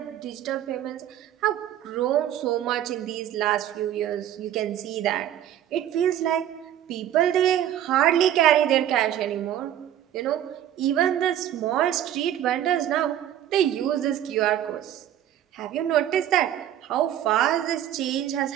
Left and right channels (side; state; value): left; quieter; 11.4 dB